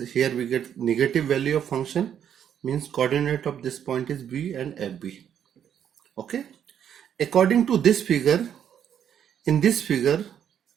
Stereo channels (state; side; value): quieter; left; 9.1 dB